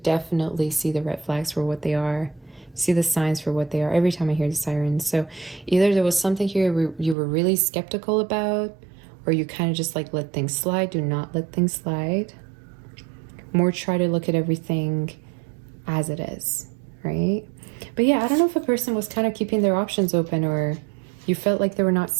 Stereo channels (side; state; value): left; drops out; at 7.2 s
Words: see the red flags for what they are. see the signs for what they are every time I hear the sirens. So either there was something here where you were really skeptical about, or you kind of just like let things slide. Do not let things slide. More try to look at everything as it is, right? But yeah, I don't know if a person was kind of keeping their options open, or you felt like they were not